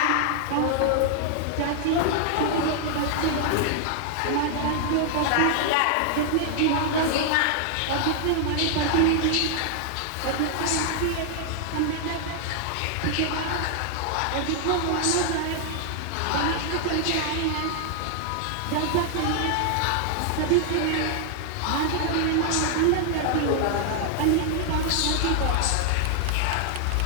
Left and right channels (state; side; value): different; both; correlation 0.00